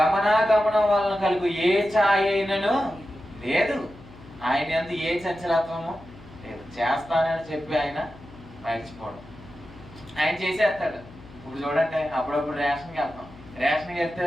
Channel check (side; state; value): left; noise; hum, 20 dB below the sound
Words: వలన కలుగు ఏ ఛాయ అయినను లేదు. ఆయన యందు ఏ చంచలత్వము లేదు. చేస్తానని చెప్పి ఆయన మర్చిపోవడం. ఆయన చేసేస్తాడు. ఇప్పుడు చూడండి, అప్పుడప్పుడు రేషన్కి వెళ్తాం. రేషన్కి